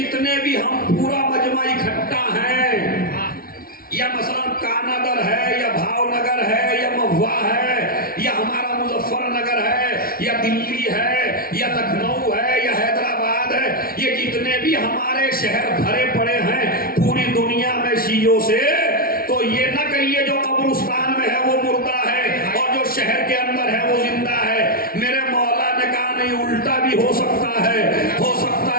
भी हम पूरा मजमा इकट्ठा हैं, या मसलन कानागर है या भावनगर है या महुआ है या हमारा मुजफ्फरनगर है या दिल्ली है या लखनऊ है या हैदराबाद है, ये जितने भी हमारे शहर भरे पड़े हैं पूरी दुनिया में शीयों से, तो ये न कहिए जो कब्रिस्तान में है वो मुर्दा है और जो शहर के अंदर है वो जिंदा है। मेरे मौला ने कहा नहीं, उल्टा भी हो सकता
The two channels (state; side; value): late; right; 0.43 ms